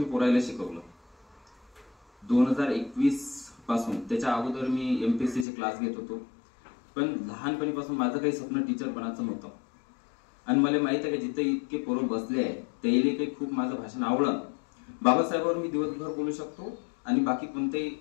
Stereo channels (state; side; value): drops out; right; at 5.5 s